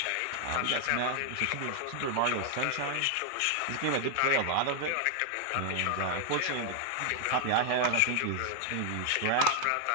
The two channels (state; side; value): different; both; correlation 0.00